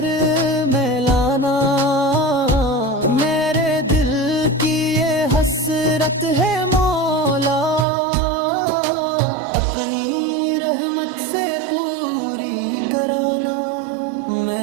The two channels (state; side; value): drops out; left; at 7.9 s